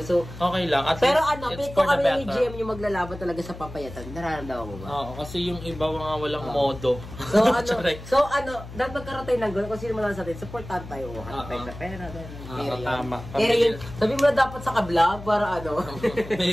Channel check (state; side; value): noise; left; hum, 13 dB below the sound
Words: So, Okay lang, at pero least pick it's ko for the kami ni better. GM yung maglalaban talaga sa papayatan. Nararamdaman mo ba? Oo, kasi yung iba mga walang modo. So, Charay. dapat magkaroon tayo ng gano'n. Kung sino man sa atin, supportan tayo. Hanap tayo sa pera. Tama. Pero yun, sabi mo na dapat sa ka-vlog para May